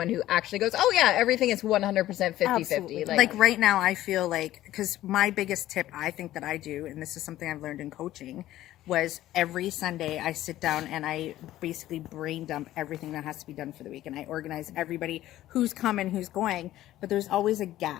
who actually goes, oh yeah, everything is 100% 50-50. Absolutely. Like right now, I feel like, because my biggest tip I think that I do, and this is something I've learned in coaching, was every Sunday I sit down and I basically brain dump everything that has to be done for the week, and I organize everybody who's coming, who's going, but there's always a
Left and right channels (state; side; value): quieter; right; 14.3 dB